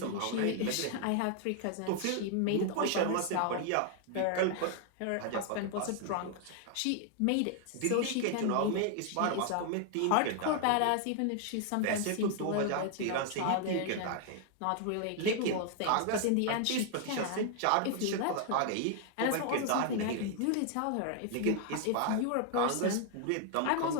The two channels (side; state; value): both; different; correlation 0.00